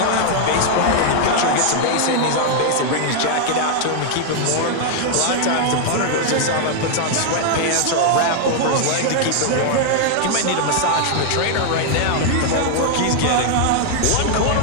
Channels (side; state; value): both; different; correlation 0.00